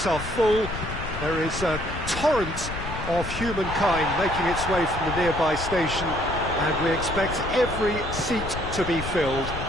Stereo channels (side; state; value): left; noise; rumble, 8 dB below the sound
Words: are full. There is a torrent of humankind making its way from the nearby station, and we expect every seat to be filled.